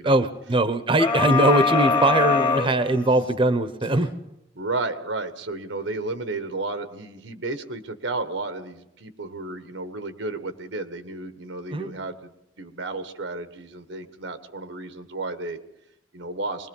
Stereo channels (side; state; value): both; normal; correlation 0.34